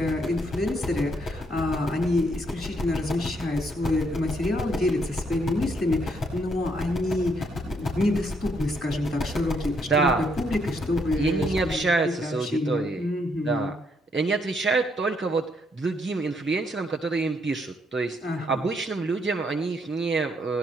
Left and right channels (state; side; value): normal; both; correlation 0.73